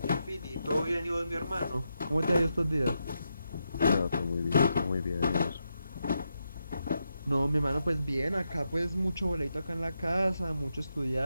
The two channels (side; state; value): both; inverted; correlation -0.85